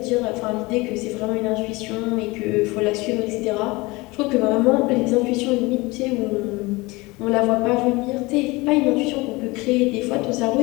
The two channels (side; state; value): right; quieter; 23.1 dB